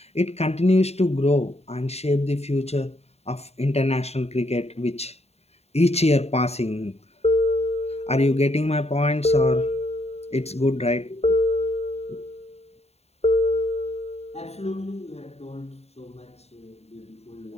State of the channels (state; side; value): late; right; 0.30 ms